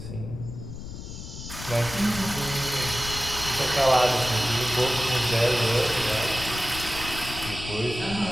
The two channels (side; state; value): left; noise; rumble, 10 dB below the sound